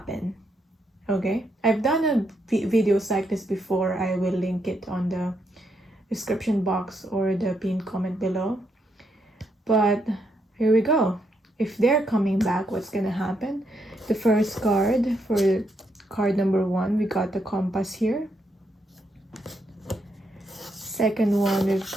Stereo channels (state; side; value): normal; both; correlation 0.78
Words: Okay, I've done videos like this before. I will link it on the description box or the pinned comment below. But here we go. If they're coming back, what's gonna happen? The first card, for card number 1, we got the compass here. Second one, we've